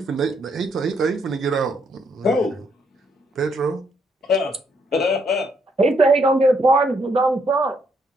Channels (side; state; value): both; normal; correlation 0.73